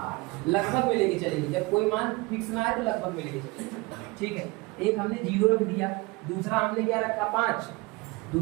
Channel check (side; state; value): left; quieter; 24.5 dB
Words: लगभग में लेके चलेंगे। जब कोई मान फिक्स ना आए तो लगभग में लेके चलेंगे, ठीक है। एक हमने 0 रख दिया, दूसरा हमने क्या रखा 5,